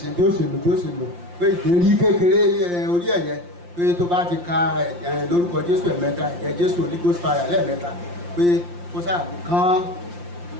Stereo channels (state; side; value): late; left; 5.7 ms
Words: bí ó ṣe lò pé ìdérí kékeré orí ẹ̀yẹ pé tó bá ti ka lórúkọ Jésù ẹ̀mẹ́ta ẹ̀jẹ̀ Jésù Holy Ghost fire lẹ́ẹ̀mẹ́ta pé kó ṣàgbé kán